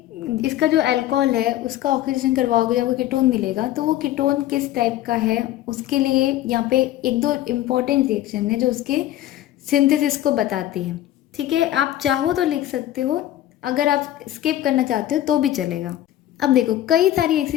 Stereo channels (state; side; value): quieter; right; 13.3 dB